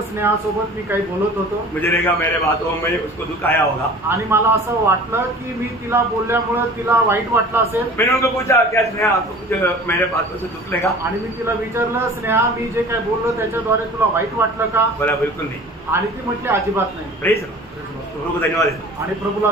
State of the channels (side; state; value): both; normal; correlation 0.43